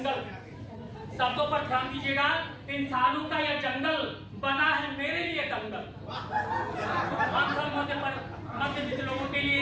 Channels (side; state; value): both; identical; correlation 1.00